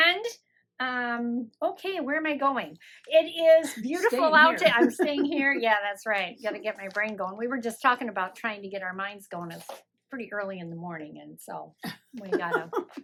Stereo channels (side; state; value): both; identical; correlation 1.00